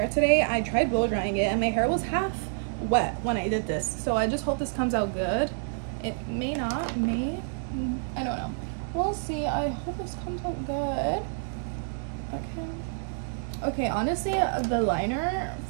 today. I tried blow drying it and my hair was half wet when I did this. So I just hope this comes out good. It may not, I don't know. We'll see. I hope this comes out good. Okay, honestly, the liner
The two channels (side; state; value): left; silent; digital silence